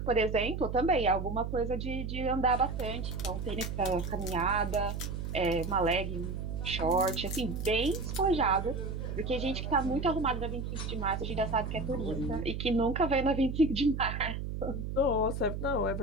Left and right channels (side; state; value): right; noise; hum, 4 dB below the sound